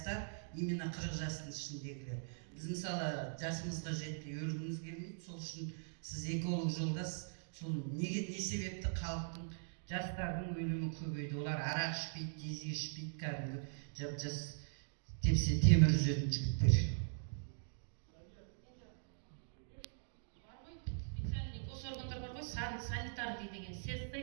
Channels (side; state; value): left; silent; digital silence